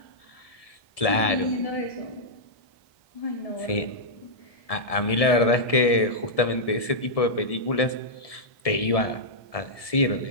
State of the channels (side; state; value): right; late; 1.7 ms